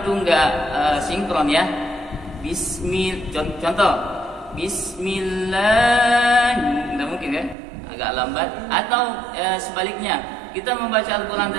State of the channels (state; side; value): drops out; left; at 7.6 s